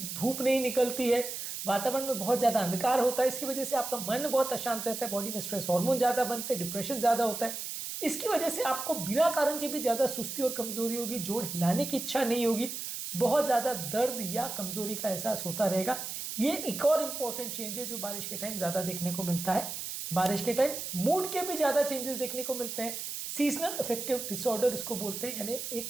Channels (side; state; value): right; noise; hiss, 6 dB below the sound